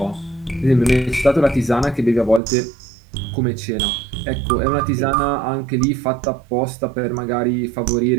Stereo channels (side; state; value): left; drops out; at 2.4 s